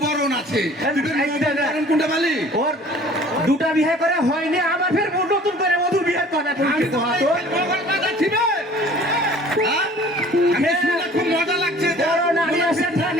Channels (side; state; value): both; normal; correlation 0.49